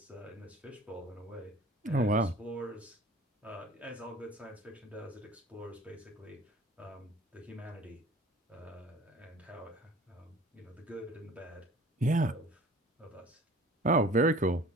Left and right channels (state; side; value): normal; both; correlation 0.46